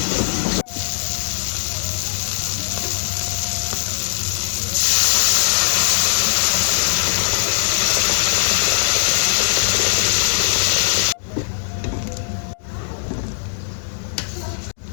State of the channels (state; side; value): silent; right; digital silence